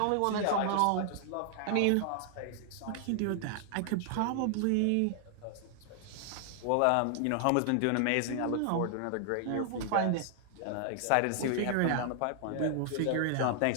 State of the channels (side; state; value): both; different; correlation 0.00